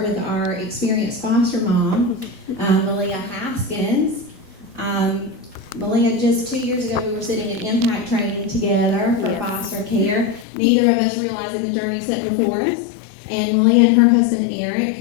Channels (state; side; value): drops out; right; at 10.5 s